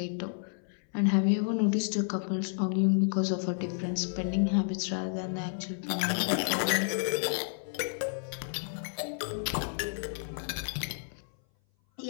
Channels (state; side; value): silent; right; 56 dB below the other